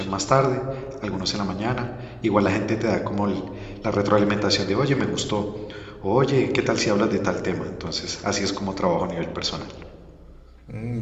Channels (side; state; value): both; identical; correlation 1.00